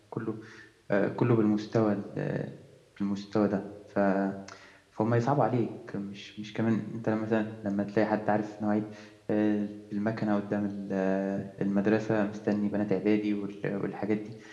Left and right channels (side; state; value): both; identical; correlation 1.00